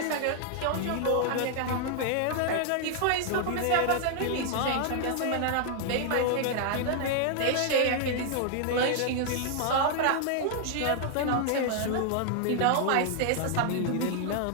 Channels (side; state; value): both; different; correlation 0.00